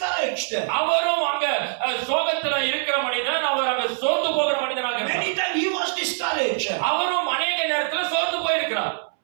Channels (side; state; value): left; silent; 63 dB below the other